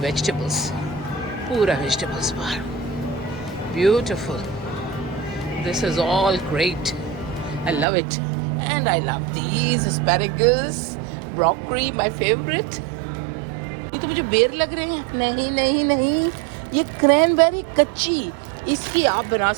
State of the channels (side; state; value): left; drops out; at 7.9 s